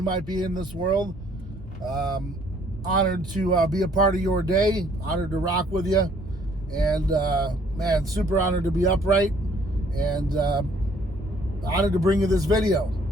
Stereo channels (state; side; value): normal; both; correlation 0.61